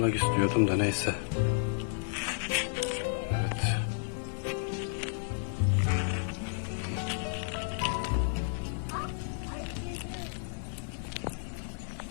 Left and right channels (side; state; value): right; silent; 56 dB below the other